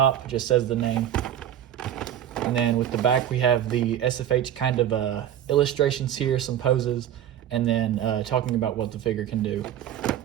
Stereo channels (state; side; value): quieter; left; 10.7 dB